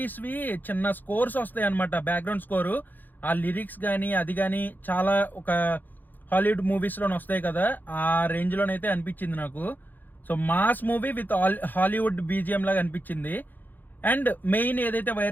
చిన్న స్కోర్స్ వస్తాయి అనమాట, బ్యాక్గ్రౌండ్ స్కోరు. ఆ లిరిక్స్ కానీ అది కానీ చాలా ఒక హాలీవుడ్ మూవీస్ లోనే వస్తాయి కదా, ఆ రేంజ్ లోనైతే అనిపించింది నాకు. So mass movie with Hollywood BGM లాగా అనిపించింది. అండ్ మెయిన్ ఏదైతే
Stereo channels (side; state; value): right; late; 0.087 ms